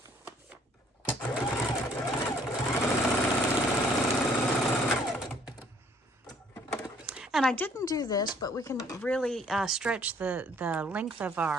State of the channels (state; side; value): normal; both; correlation 0.62